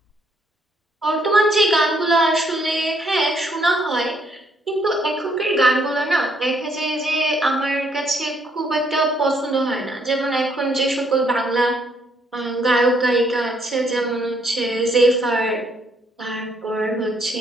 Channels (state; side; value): normal; both; correlation 0.70